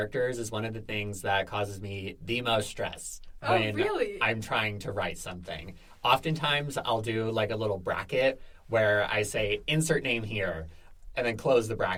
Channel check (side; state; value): both; identical; correlation 1.00